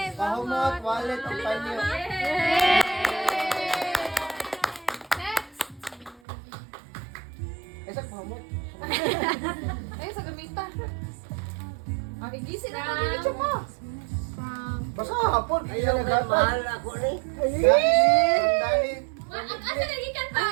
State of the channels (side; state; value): left; drops out; at 6.2 s